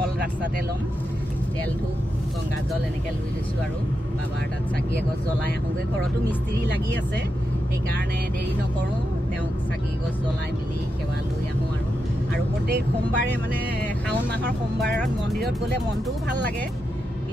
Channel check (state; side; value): normal; both; correlation 0.87